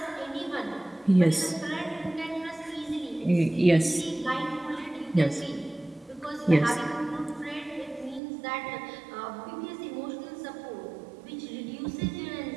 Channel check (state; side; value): drops out; left; at 8.2 s